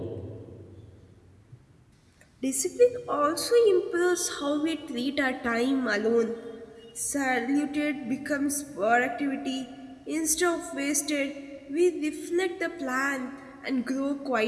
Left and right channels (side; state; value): both; identical; correlation 1.00